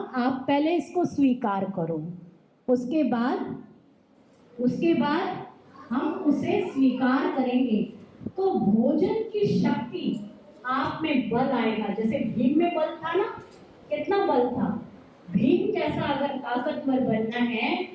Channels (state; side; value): identical; both; correlation 1.00